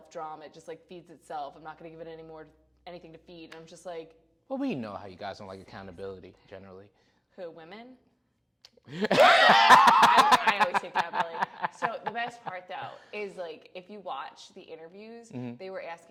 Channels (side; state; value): both; identical; correlation 1.00